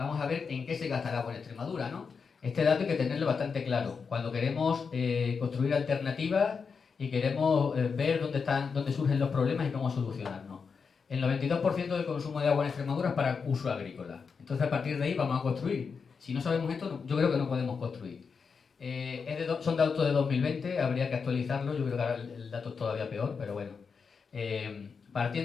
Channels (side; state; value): right; quieter; 5.5 dB